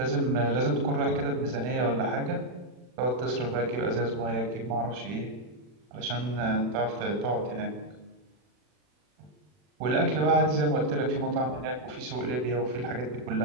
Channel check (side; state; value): left; late; 40 ms